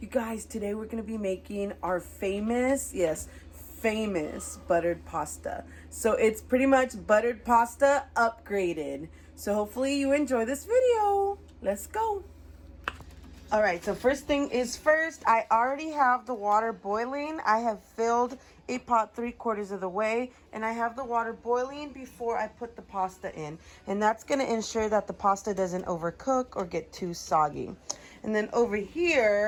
guys, today we're going to be making our famous, yes, famous buttered pasta. So it's pretty much buttered pasta upgraded. So hopefully you enjoy this video. Let's go. All right, so first thing is first, I already have the water boiling. I have filled a pot 3/4 of the way, and I have the water boiling before I put the pasta in. And that's gonna ensure that the pasta doesn't overcook or get too soggy. And then over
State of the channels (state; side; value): identical; both; correlation 1.00